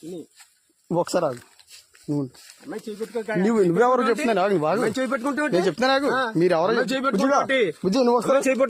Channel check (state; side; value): identical; both; correlation 1.00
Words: తుని. ఒకసారి ఆగు. నువ్వెవరు చెప్తున్నాను నేను చెప్తున్నా నాకు మీరు ఎవరో బుజ్జి నువ్వు వస్తారా